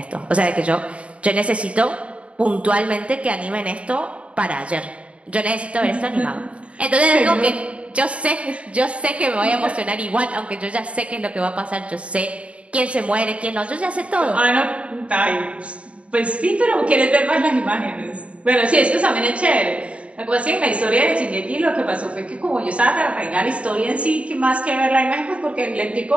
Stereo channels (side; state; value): left; late; 0.062 ms